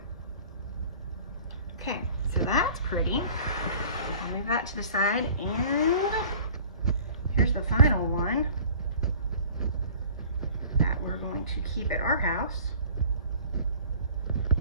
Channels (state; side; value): inverted; both; correlation -0.47